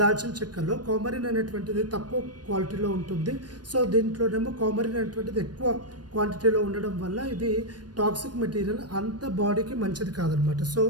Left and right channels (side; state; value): left; late; 0.69 ms